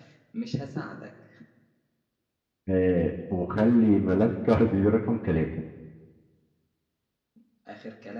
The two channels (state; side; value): identical; both; correlation 1.00